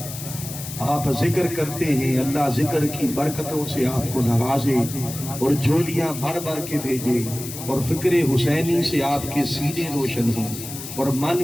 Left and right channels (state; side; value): noise; left; hiss, 10 dB below the sound